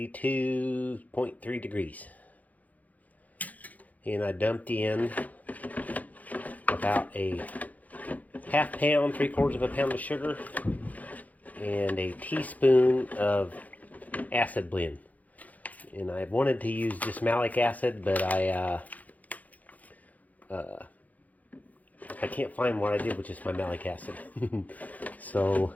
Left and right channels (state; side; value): late; right; 0.077 ms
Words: degrees. And I dumped in about a half pound, 3/4 of a pound of sugar, and a teaspoon of acid blend. And I wanted to use just malic acid, but I can't find what I did with just my malic acid. So